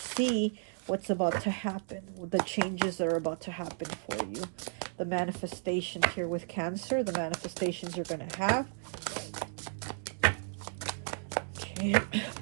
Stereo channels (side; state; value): left; silent; digital silence